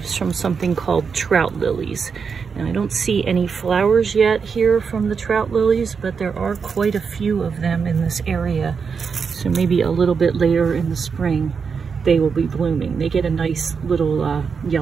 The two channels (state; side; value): quieter; left; 5.8 dB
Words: from something called Trout Lilies. And I don't see any flowers yet here from the Trout Lilies, but there are quite a few of them in this area. So maybe a little bit later in the spring, they will be blooming. They get a nice little